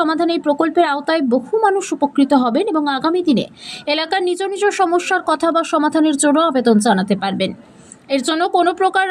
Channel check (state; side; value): identical; both; correlation 1.00